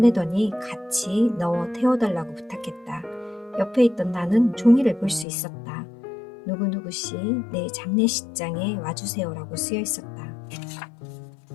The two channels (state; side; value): drops out; right; at 5.2 s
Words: 같이 넣어 태워달라고 부탁했다. 옆에 있던 나는 종이를 볼 수 있었다. 누구누구씨 내 장례식장에 와주세요라고 쓰여 있었다.